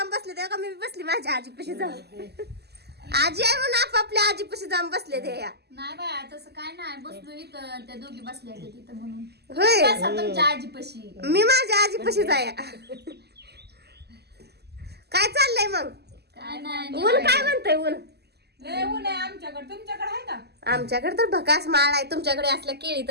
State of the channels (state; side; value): late; left; 0.47 ms